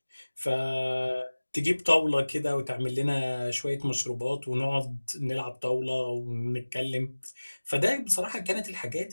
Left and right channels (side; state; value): both; inverted; correlation -1.00